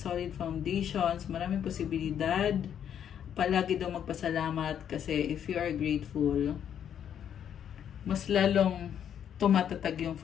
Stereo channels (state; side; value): quieter; right; 9.1 dB